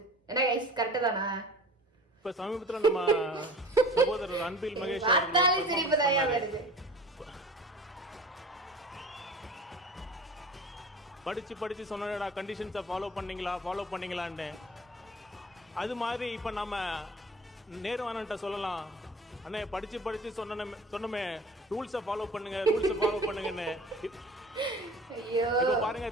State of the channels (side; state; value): both; normal; correlation 0.42